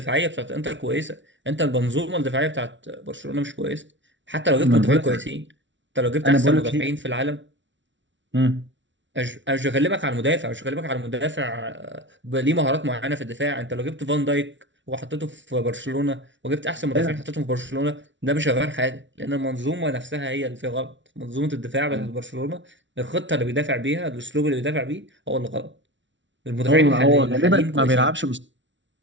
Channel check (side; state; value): left; late; 0.55 ms